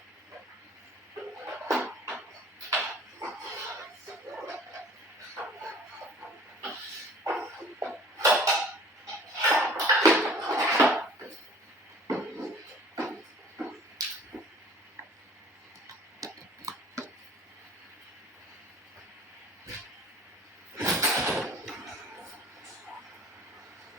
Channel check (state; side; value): normal; both; correlation 0.50